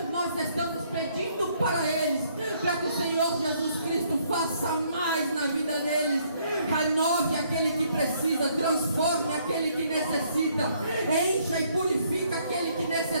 nós estamos pedindo para eles, para que o Senhor Jesus Cristo faça mais na vida deles, renove aquele que precisa, transforme aquele que necessita, encha e purifica aquele que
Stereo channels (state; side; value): inverted; both; correlation -0.67